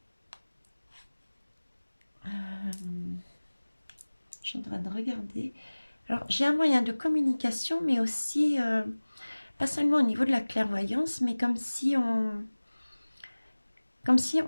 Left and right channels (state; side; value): inverted; both; correlation -1.00